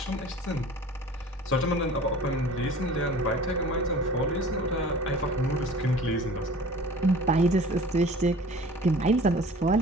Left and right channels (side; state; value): both; normal; correlation 0.45